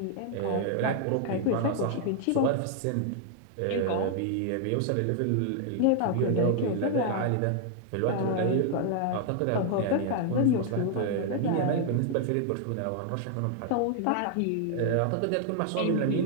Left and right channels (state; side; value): different; both; correlation 0.00